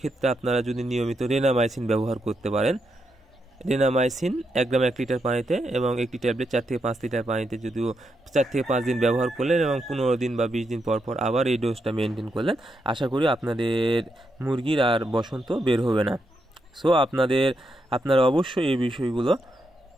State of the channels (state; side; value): normal; both; correlation 0.82